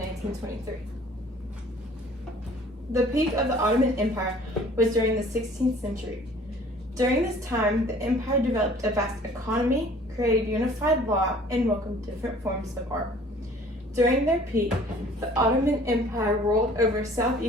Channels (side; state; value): both; normal; correlation 0.52